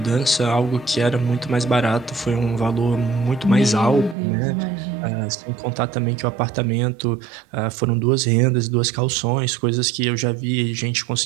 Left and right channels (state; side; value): drops out; left; at 4.2 s